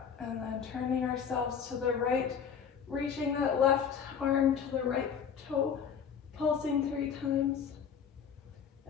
and then turning ourselves to the right, reaching that left arm to the right toe, pulsing 3 times,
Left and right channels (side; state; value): right; quieter; 7.3 dB